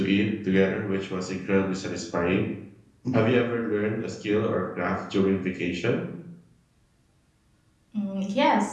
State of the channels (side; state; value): both; identical; correlation 1.00